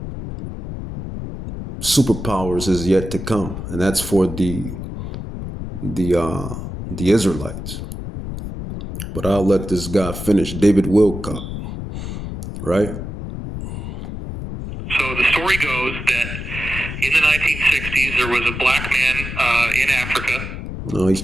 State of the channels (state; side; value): noise; left; rumble, 7 dB below the sound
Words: superpowers is yet to come, and that's for the Israelites. But I'll let this guy finish. David Wilcock, right? So the story goes that in the 1960s, there was a black man in Africa. No,